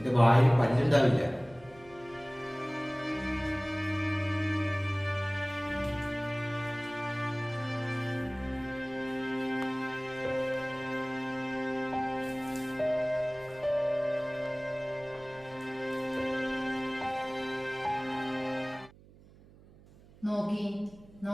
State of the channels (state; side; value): noise; right; hum, 23 dB below the sound